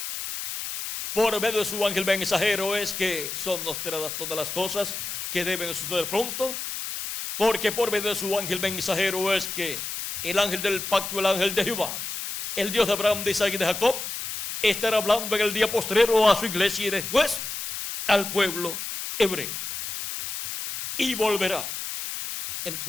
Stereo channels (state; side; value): noise; left; hiss, 6 dB below the sound